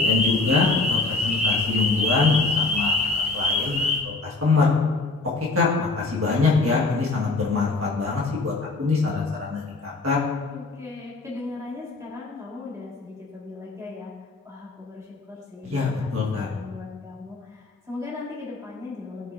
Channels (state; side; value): quieter; right; 3.5 dB